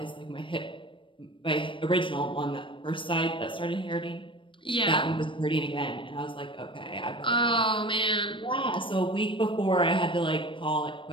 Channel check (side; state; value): right; late; 0.25 ms